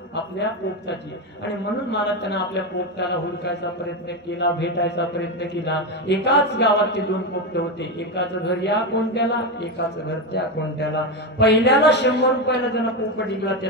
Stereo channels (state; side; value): normal; both; correlation 0.13